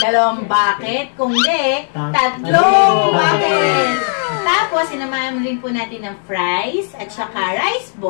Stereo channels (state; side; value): silent; right; 69 dB below the other